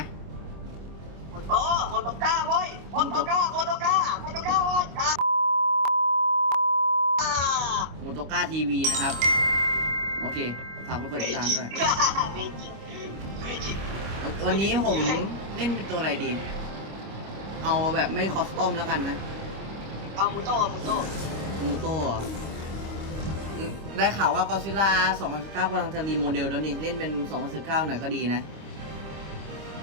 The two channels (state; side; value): late; left; 25 ms